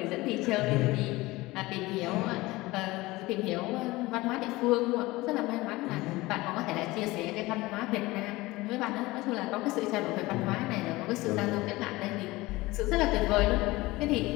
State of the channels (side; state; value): right; quieter; 20.2 dB